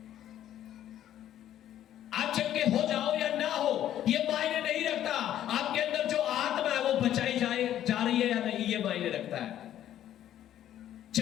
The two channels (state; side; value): quieter; right; 11.6 dB